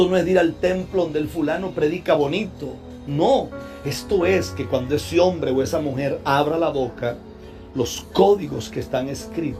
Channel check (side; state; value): both; identical; correlation 1.00